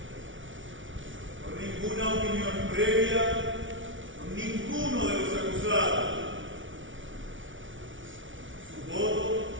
por ninguna opinión previa, por ninguno de los acusados. Su voto,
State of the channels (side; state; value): left; late; 0.56 ms